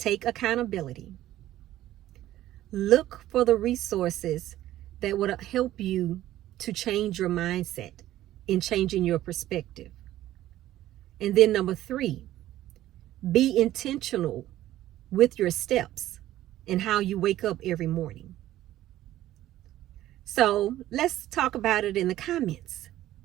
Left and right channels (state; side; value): quieter; left; 14.0 dB